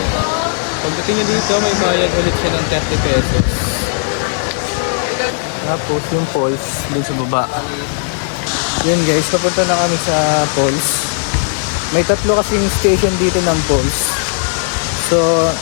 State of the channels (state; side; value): silent; right; 65 dB below the other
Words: Pagdating nyo dito, may bayad ulit siya ng 30 pesos. Tapos yung falls dun sa baba. Yan guys, papunta na kami sa falls. May 3 kasing station dito ng Pulse. So,